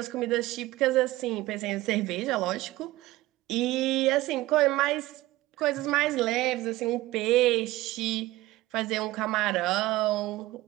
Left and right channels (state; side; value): quieter; left; 17.9 dB